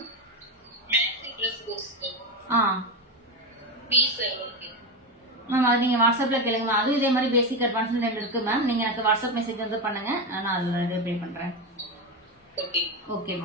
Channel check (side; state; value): both; normal; correlation 0.15